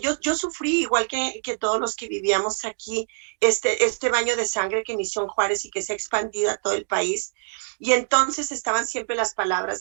Yo sufrí igual que todos los que vivíamos aquí este baño de sangre que inició en Juárez y que se ha expandido a todo el país. Y entonces estaban siempre las palabras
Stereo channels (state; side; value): silent; left; digital silence